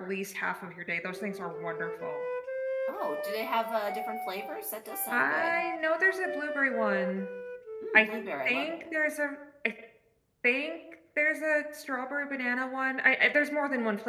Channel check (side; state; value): both; identical; correlation 1.00